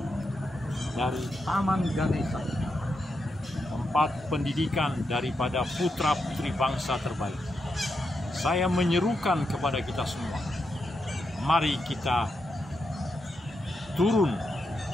dari Taman Ganesha, tempat pendidikan daripada putra-putri bangsa terbaik, saya menyerukan kepada kita semua, mari kita turun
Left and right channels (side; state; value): both; normal; correlation 0.84